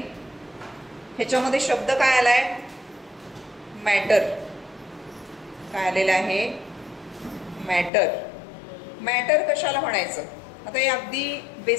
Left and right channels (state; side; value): drops out; right; at 7.9 s